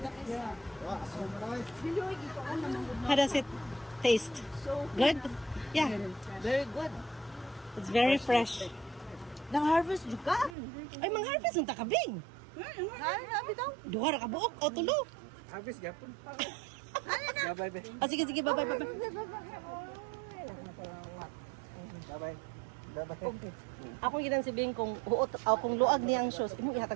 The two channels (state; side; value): drops out; left; at 10.6 s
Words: How does it taste? Good? Yeah. Very good. It's very fresh. Nang-harvest juga? Ay, mang-harvest ng takabing. Duha ra ka buok o tulo. Habis gapon. Bye-bye, be. Ah, sige, bye-bye. Bye-bye. Ako ginan si Bing kung huot o kung luag niyang shoes, imong